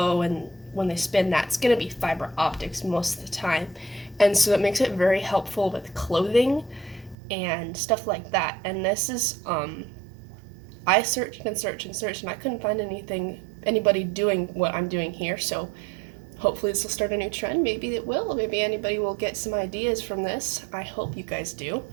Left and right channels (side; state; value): left; drops out; at 7.2 s